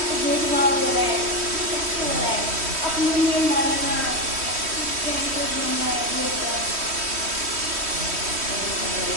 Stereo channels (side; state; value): left; late; 3.1 ms